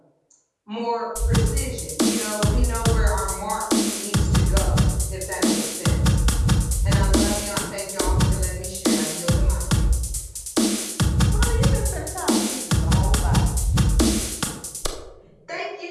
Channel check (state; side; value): identical; both; correlation 1.00